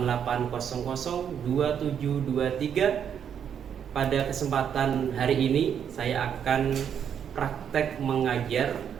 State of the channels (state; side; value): quieter; left; 8.3 dB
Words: Pada kesempatan hari ini saya akan praktek mengajar